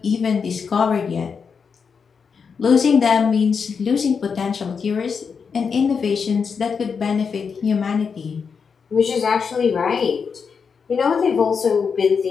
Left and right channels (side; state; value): right; quieter; 5.9 dB